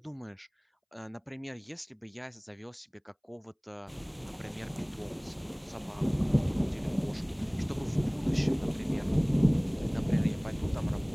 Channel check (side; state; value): both; identical; correlation 1.00